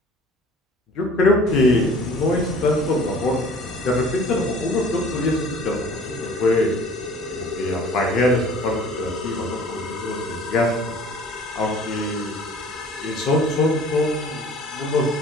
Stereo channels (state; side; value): normal; both; correlation 0.49